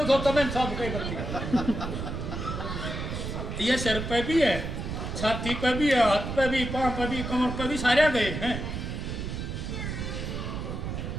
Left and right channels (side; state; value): right; noise; rumble, 5 dB below the sound